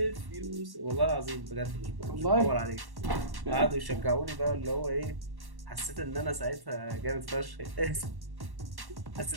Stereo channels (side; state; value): left; late; 1.1 ms